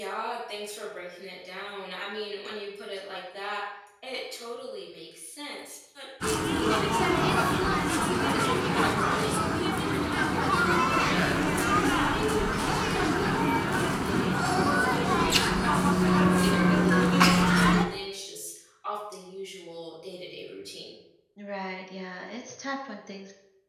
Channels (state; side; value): identical; both; correlation 1.00